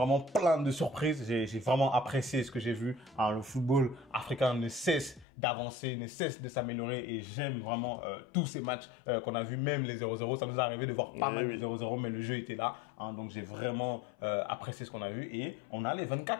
plein de surprises. J'ai vraiment apprécié ce que j'ai vu. Hein, le football africain ne cesse d'avancer, ne cesse de s'améliorer et j'aime vraiment tous ces matchs qu'on a vu, même les 0-0. Ça nous est arrivé de voir pas mal de 0-0, mais le jeu était là. Hein, donc j'ai vraiment apprécié ce qu'on a vu et on a les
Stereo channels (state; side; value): drops out; right; at 5.2 s